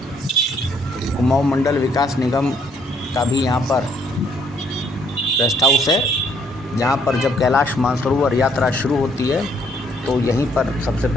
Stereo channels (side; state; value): both; normal; correlation 0.67